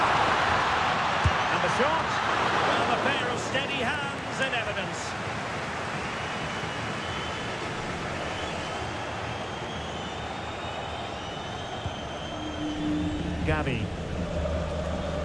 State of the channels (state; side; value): identical; both; correlation 1.00